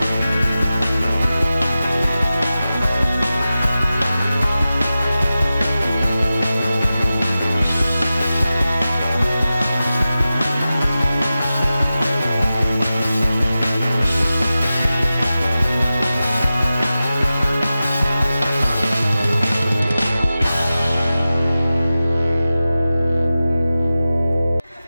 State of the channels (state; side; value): inverted; both; correlation -0.94